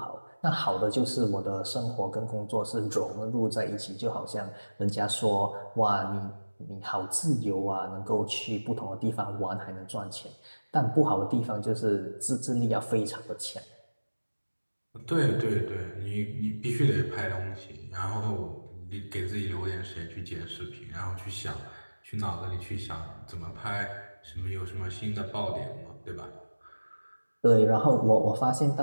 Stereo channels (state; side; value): inverted; both; correlation -1.00